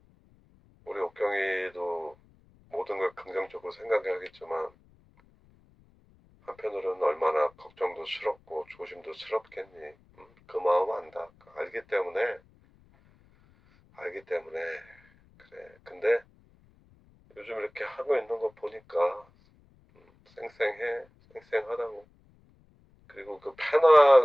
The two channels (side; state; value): left; noise; rumble, 30 dB below the sound